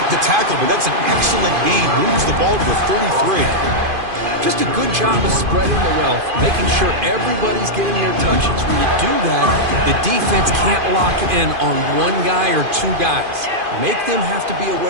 the tackle, but that's an excellent gain. Moves the ball to the 33. Just a good job of spreading the wealth, making sure everybody's getting their touches. When you do that, the defense can't lock in on one guy or two guys. Make them have to be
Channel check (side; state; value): left; late; 2.5 ms